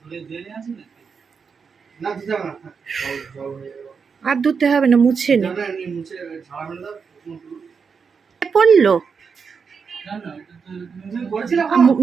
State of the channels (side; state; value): left; quieter; 5.8 dB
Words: ধরে ধরে আছে না দিতে হবে না, জল জল হয়ে যাবে। আর ধুতে হবে না, মুছে নি। না না, এমনি মুছে ঝাড়া মেরে দাও। পড়লো না না, এটা তো তুমি বলছিলে